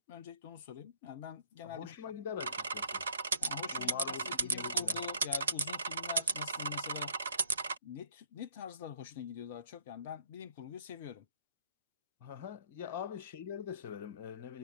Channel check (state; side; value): inverted; both; correlation -0.62